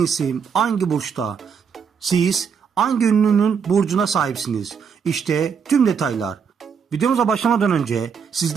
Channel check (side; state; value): left; quieter; 6.6 dB